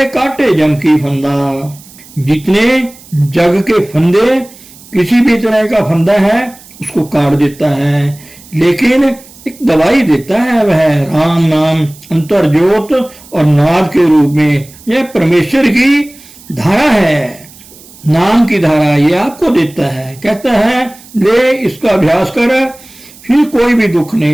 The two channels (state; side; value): noise; right; hiss, 22 dB below the sound